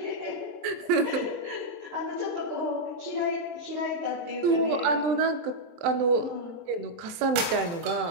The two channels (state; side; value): late; left; 23 ms